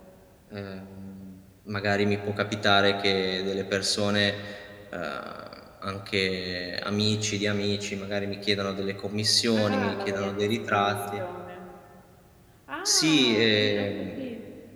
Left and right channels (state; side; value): identical; both; correlation 1.00